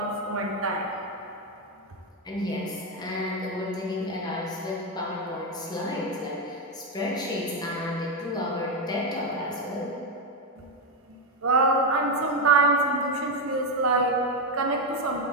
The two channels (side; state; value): both; normal; correlation 0.07